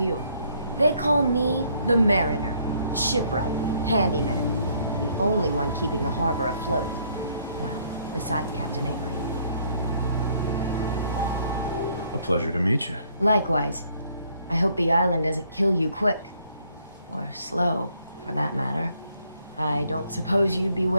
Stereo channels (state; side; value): inverted; both; correlation -0.66